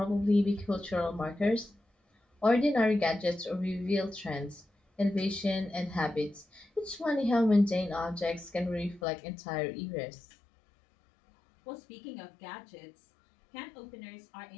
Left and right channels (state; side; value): drops out; right; at 9.0 s